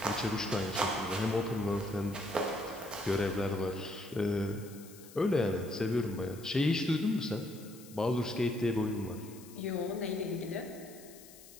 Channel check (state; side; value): noise; left; hiss, 19 dB below the sound